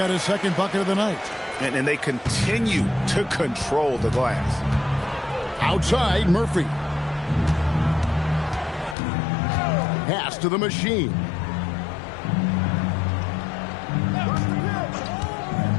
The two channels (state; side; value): drops out; right; at 9.0 s